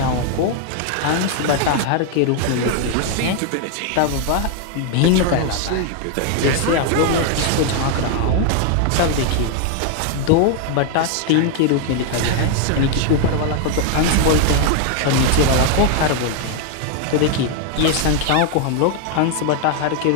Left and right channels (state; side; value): different; both; correlation 0.00